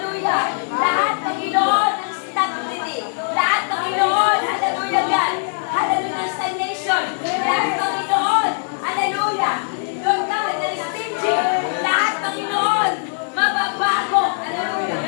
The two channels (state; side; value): silent; right; 65 dB below the other